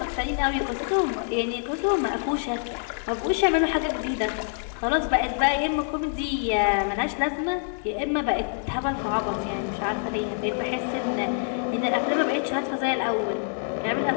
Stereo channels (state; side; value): silent; right; 59 dB below the other